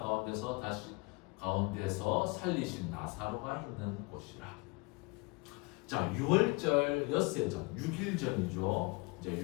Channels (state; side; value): quieter; right; 27.1 dB